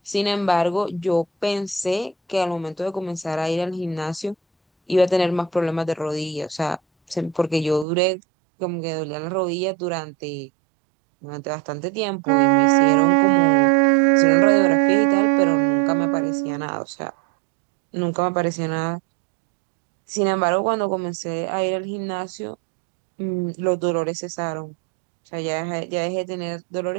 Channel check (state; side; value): drops out; left; at 7.9 s